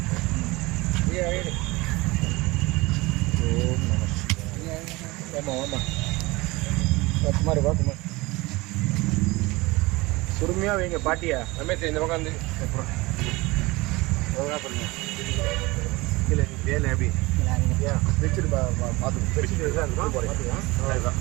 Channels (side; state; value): left; quieter; 22.4 dB